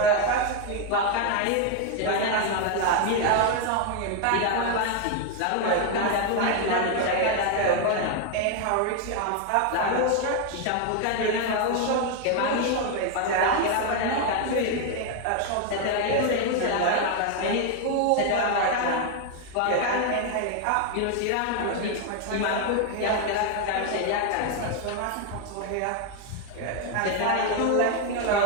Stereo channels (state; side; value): different; both; correlation 0.01